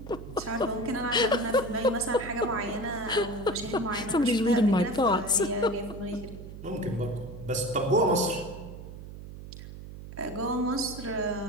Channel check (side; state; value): right; noise; hum, 13 dB below the sound